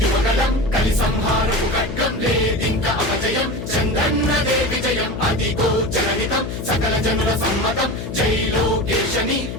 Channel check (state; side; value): noise; left; hum, 7 dB below the sound